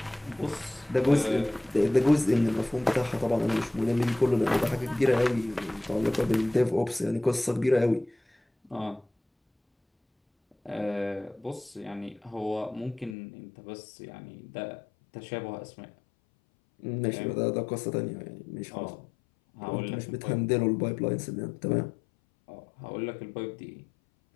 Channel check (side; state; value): right; drops out; at 13.2 s